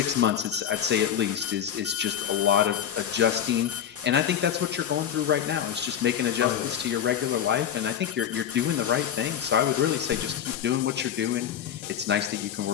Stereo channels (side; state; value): right; quieter; 9.3 dB